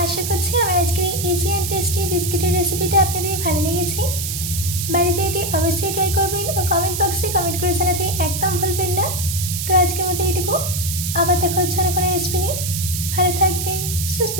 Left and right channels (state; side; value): noise; right; hiss, 4 dB below the sound